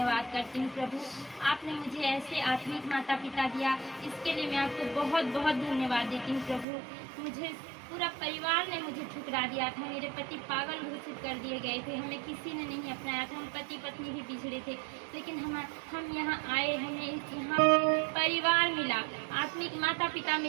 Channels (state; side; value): drops out; left; at 6.7 s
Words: करती हूँ प्रभु। आपने मुझे ऐसे आत्मिक माता पिता दिया, इसके लिए मैं आपको बहुत बहुत धन्यवाद देती हूँ प्रभु। मुझे पूरा परिवार ने मुझे ठुकरा दिया था, मेरे पति पागल घोषित कर दिए गए थे, हमें किसी ने नहीं अपनाया था, हम पति पत्नी भी बिछड़े थे। लेकिन हम यहाँ आए, हमें यहाँ परिवार मिला, आत्मिक माता पिता